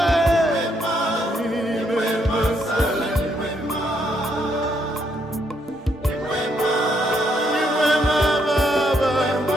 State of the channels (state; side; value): normal; both; correlation 0.74